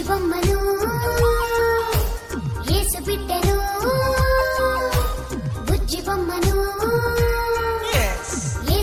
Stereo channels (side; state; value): both; identical; correlation 1.00